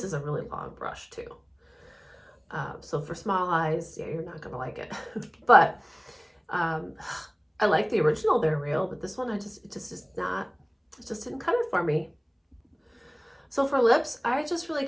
is a really long brush too. So for small eyes, yeah, you're not gonna like it. But I like the original They're Real, but this one it just didn't cut it for me. So for lips, I just really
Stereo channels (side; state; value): both; identical; correlation 1.00